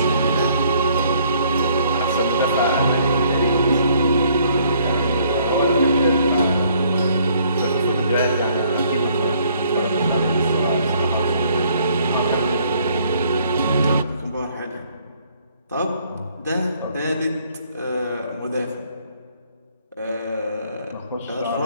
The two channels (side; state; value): both; inverted; correlation -0.64